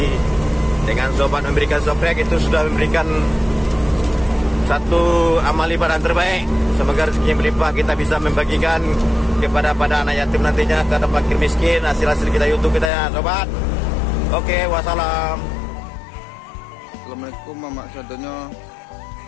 Dengan sobat memberikan soprek itu sudah memberikan satu amal ibadah terbaik. Semoga rezeki melimpah, kita bisa membagikan kepada anak yatim nantinya, kepada fakir miskin, hasil kita YouTube kita ya sobat. Oke, wassalam. Assalamualaikum Mama Sadonya.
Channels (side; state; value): right; drops out; at 12.9 s